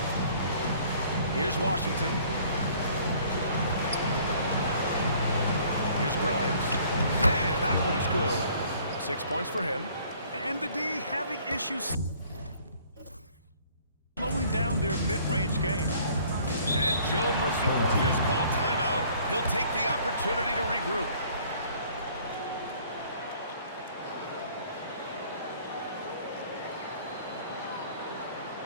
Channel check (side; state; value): both; inverted; correlation -0.56